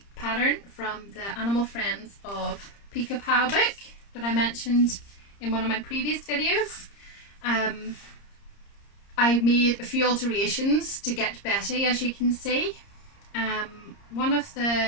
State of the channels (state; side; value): late; right; 30 ms